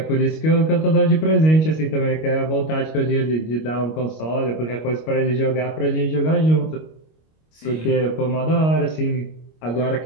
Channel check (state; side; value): late; right; 25 ms